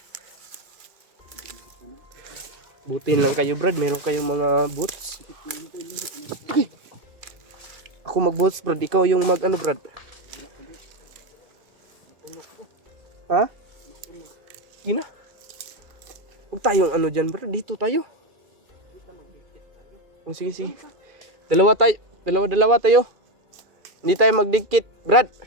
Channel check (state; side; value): late; left; 2.4 ms